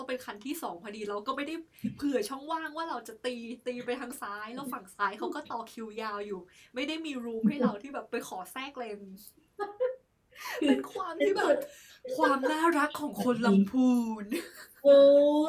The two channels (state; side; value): identical; both; correlation 1.00